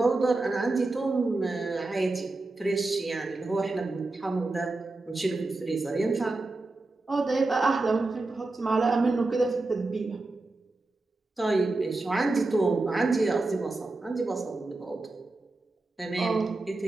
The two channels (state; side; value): quieter; left; 3.2 dB